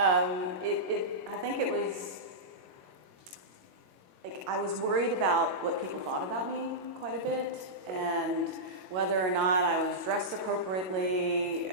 think it was, like, I was worried about what people thought about me quite a bit, and whether or not I was dressed appropriately,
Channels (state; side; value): late; left; 22 ms